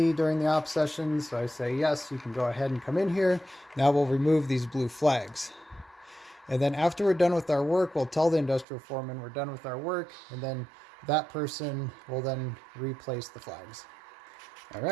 during the op session. So I say, yes, you can go ahead and come in here. Now we'll remove these blue flags. And then after we're done with our work, we'll tell the industrial foreman we're done with our work, and then that person will then replace the flags. All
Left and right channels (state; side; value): drops out; left; at 8.7 s